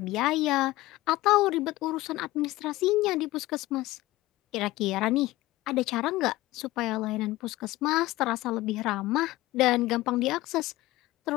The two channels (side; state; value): right; quieter; 18.1 dB